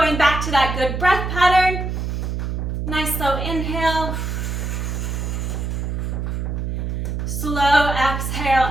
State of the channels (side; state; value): right; noise; hum, 2 dB below the sound